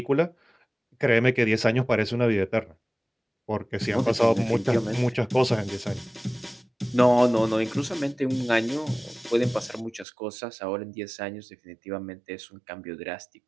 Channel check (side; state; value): left; drops out; at 10.1 s